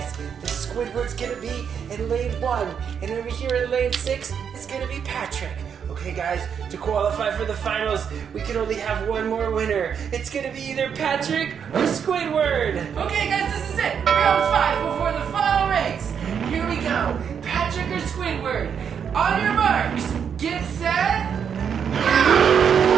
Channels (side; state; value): left; quieter; 7.5 dB